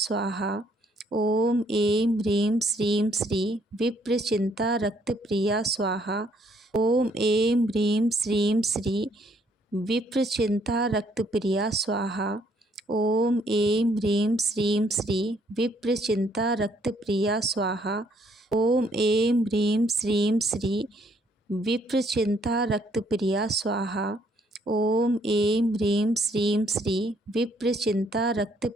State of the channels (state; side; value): normal; both; correlation 0.67